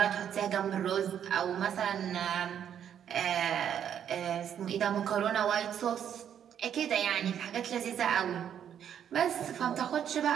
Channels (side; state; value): left; quieter; 9.2 dB